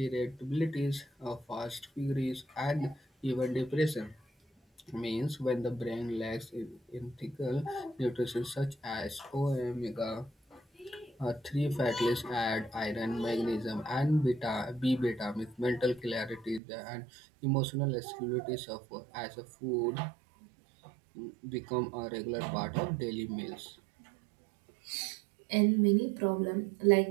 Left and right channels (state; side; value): drops out; left; at 16.6 s